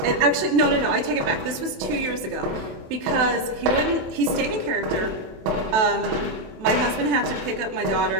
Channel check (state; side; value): late; left; 27 ms